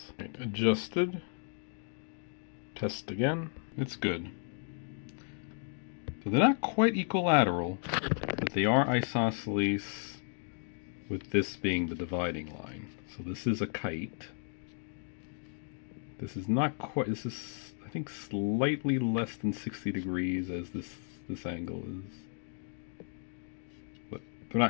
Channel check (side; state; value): right; silent; 55 dB below the other